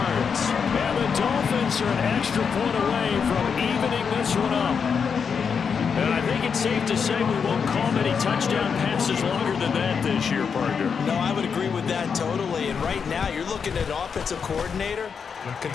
And the Dolphins are an extra point away from evening this one up. And I think it's safe to say we won't call many touchdown passes longer than that this year, partner. No, I would agree with that totally. And right now, you're looking at offensive coordinator.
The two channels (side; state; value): right; quieter; 6.3 dB